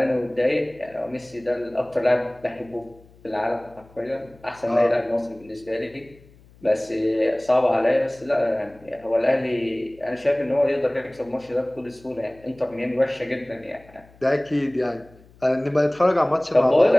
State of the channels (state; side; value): noise; left; hum, 26 dB below the sound